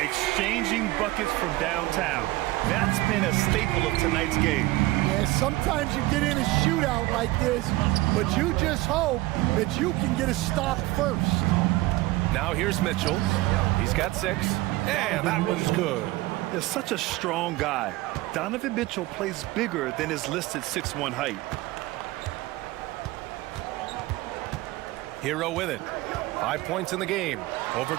buckets from downtown. That's been a staple of tonight's game. Yeah, sometimes you get in a shootout like this, but you just hope that you can get a stop first. Now here's Mitchell. He's got 6. And that one's good. He's such a strong guy. Donovan Mitchell plays bigger than his listed 6'1" height. Hero with it. 5 points in the game. Over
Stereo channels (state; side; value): quieter; left; 19.0 dB